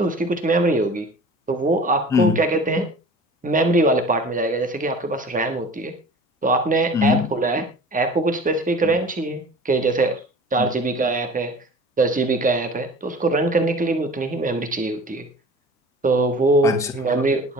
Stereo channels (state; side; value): normal; both; correlation 0.42